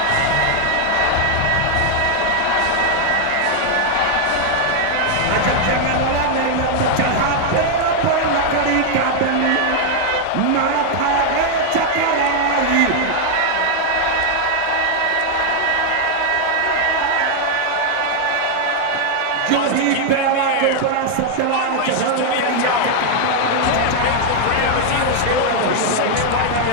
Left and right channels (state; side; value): different; both; correlation 0.00